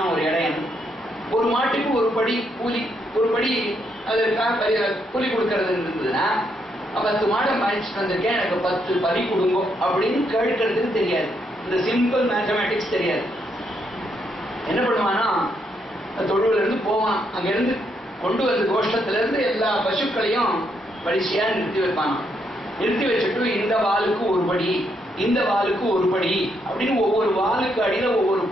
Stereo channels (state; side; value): normal; both; correlation 0.76